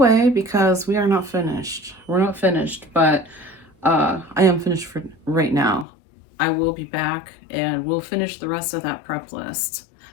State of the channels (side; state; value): right; drops out; at 5.9 s